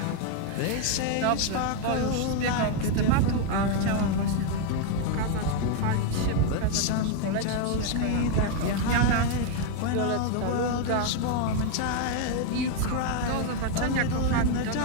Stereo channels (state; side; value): different; both; correlation 0.01